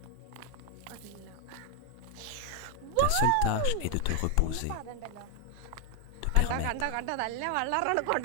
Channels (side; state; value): both; different; correlation 0.00